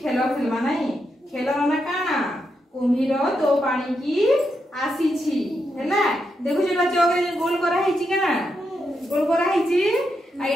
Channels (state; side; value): normal; both; correlation 0.83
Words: खेलमा नहीं खेल ना काना कुम्भीर तो पानी की आसी है देखु चौक गोल कराई केना गोल कराई